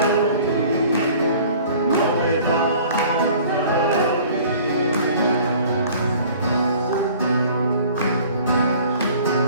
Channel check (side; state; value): both; inverted; correlation -0.49